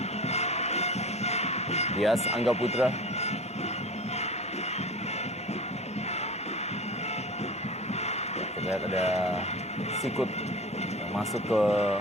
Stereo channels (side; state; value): both; normal; correlation 0.35